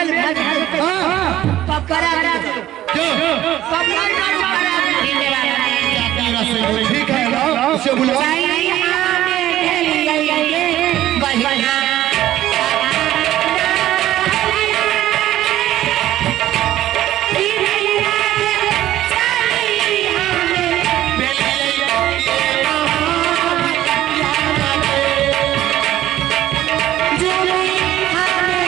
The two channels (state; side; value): quieter; left; 13.7 dB